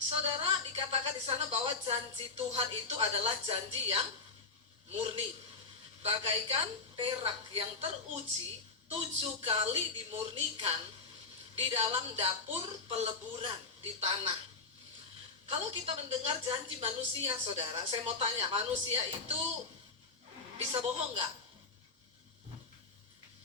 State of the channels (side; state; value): right; quieter; 4.2 dB